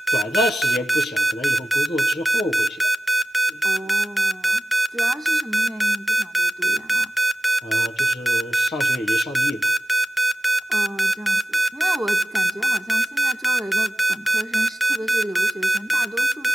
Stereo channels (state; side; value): normal; both; correlation 0.96